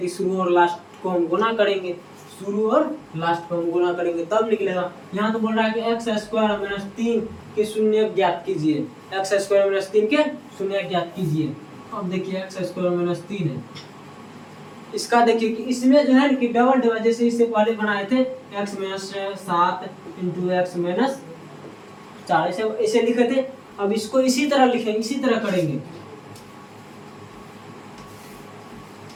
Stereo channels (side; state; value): both; identical; correlation 1.00